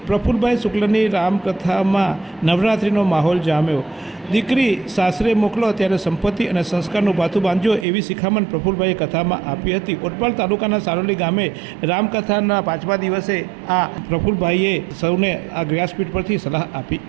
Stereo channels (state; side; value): drops out; left; at 7.9 s